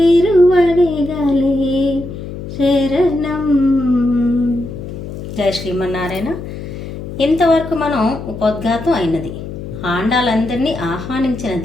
శరణం. జయ శ్రీమన్నారాయణ. ఇంతవరకు మనం ఉపోద్ఘాతం అయినది, ఆండాలందరినీ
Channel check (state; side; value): noise; left; hum, 9 dB below the sound